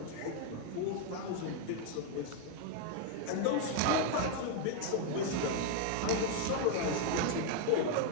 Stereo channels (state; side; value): different; both; correlation 0.00